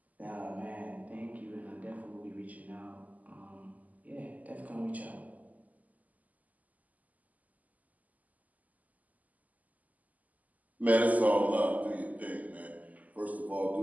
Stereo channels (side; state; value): left; late; 0.078 ms